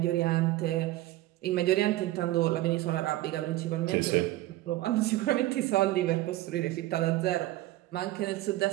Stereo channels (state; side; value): quieter; left; 16.6 dB